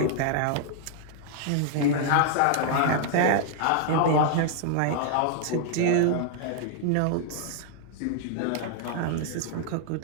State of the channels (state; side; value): different; both; correlation -0.01